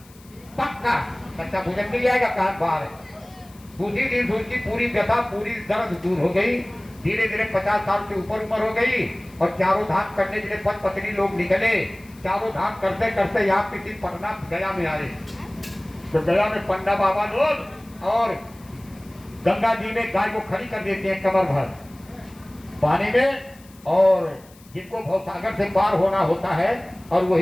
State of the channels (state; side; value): noise; left; hiss, 26 dB below the sound